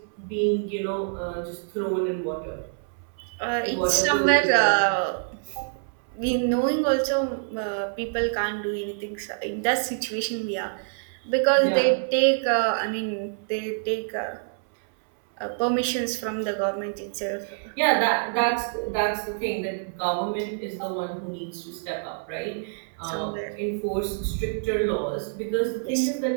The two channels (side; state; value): left; silent; 61 dB below the other